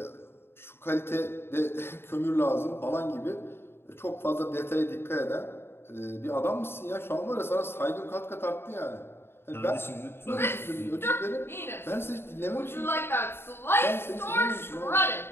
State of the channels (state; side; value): late; right; 0.11 ms